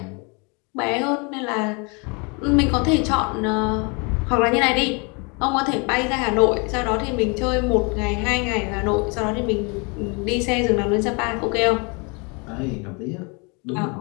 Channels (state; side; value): quieter; right; 31.9 dB